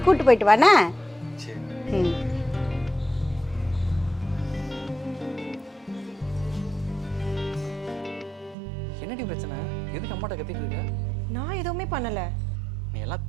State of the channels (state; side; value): drops out; left; at 8.6 s